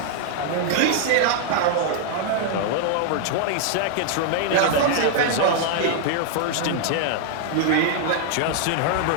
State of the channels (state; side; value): different; both; correlation 0.00